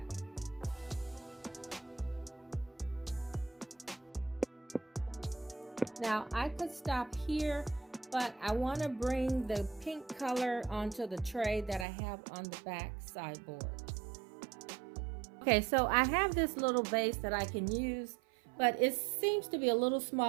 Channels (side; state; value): left; drops out; at 11.9 s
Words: Now I could stop here, but I want to bring the pink color onto the tray that I have on the back sideboard. Okay, so I have this little vase that I can use, but it seems to be a little